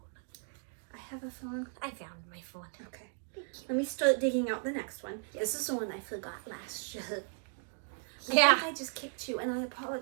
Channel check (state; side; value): silent; left; 54 dB below the other